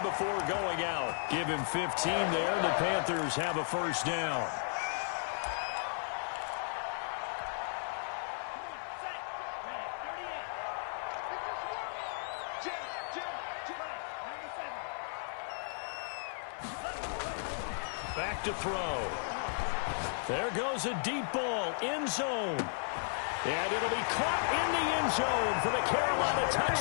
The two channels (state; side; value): silent; right; 55 dB below the other